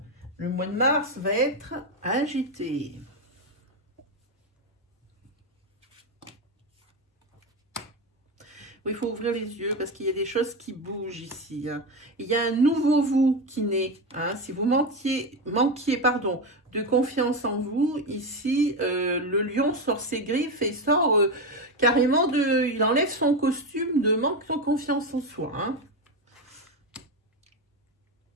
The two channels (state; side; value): normal; both; correlation 0.14